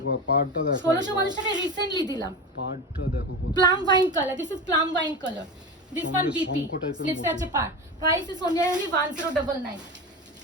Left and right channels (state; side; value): normal; both; correlation 0.23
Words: পাড়টা দেখো, 1650 টাকা রিসেন্টলি দিলাম। পাড়টা দেখো, plum wine colour, this is plum wine colour, this one BP slips আছে পার। Price is only 1099।